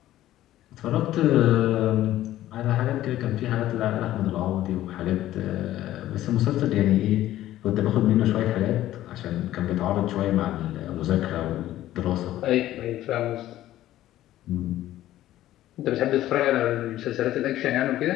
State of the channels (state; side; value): quieter; right; 14.0 dB